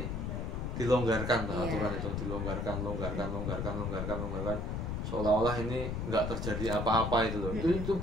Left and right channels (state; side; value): noise; left; rumble, 3 dB below the sound